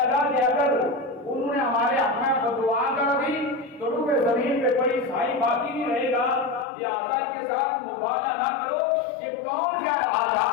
کہ اگر انہوں نے ہمارے حق میں دعا کر دی تو روح زمین پہ کوئی عیسائی باقی نہیں رہے گا, لہٰذا کے ساتھ مبالغہ نہ کرو. یہ کون کہہ رہا تھا؟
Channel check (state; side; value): drops out; right; at 6.7 s